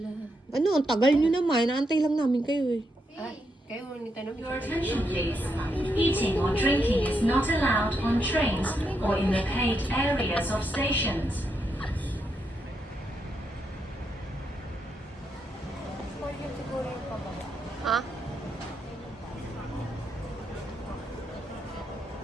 Ano, ang tagal nyo naman. Naantay lang namin kayo eh. Kayo, ni tanong. Your attention please. Eating or drinking is not allowed on trains or in the paid areas of stations. Ha?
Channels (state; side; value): normal; both; correlation 0.81